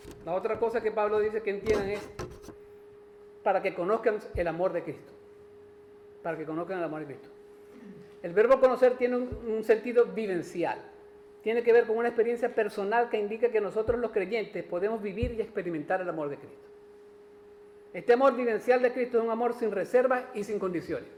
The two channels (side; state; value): both; identical; correlation 1.00